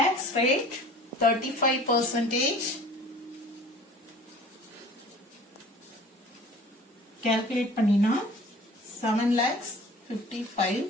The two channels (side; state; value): both; normal; correlation 0.46